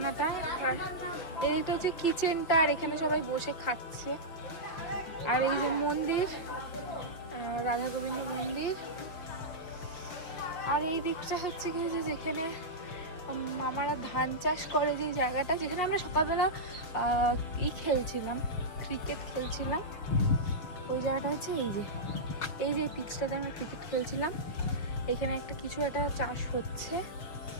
আর এদিকটা হচ্ছে কিচেনটা, আর এখানে সবাই বসে খাচ্ছে। আর এই যে মন্দির, রাধা গোবিন্দ মন্দির। আর এই দিকটা হচ্ছে কি যে যেখানে মামারা ধান চাষ করে, যে জায়গাটা যেখানে আমরা সকালবেলা খেলছিলাম, ক্রিকেট খেলছিলাম, ওই জায়গাটা হচ্ছে এই যে পিচটাতে আমরা ক্রিকেট খেলছিলাম। এখানে একটা কিছু একটা চাষ হচ্ছে।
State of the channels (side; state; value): right; late; 6.3 ms